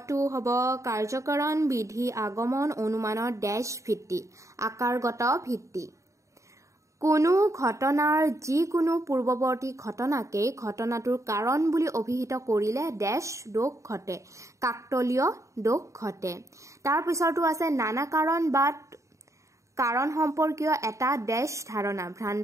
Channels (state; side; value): late; left; 0.15 ms